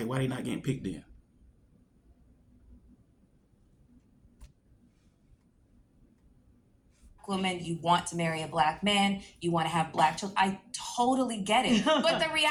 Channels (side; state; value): both; identical; correlation 1.00